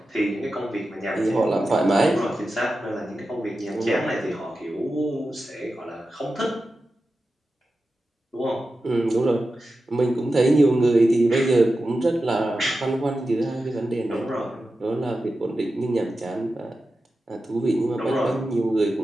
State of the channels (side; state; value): both; normal; correlation 0.92